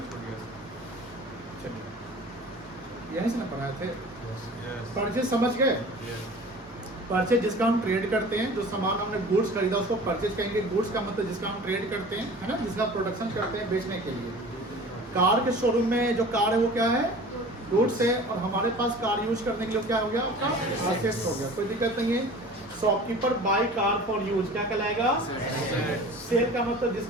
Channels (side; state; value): both; normal; correlation 0.42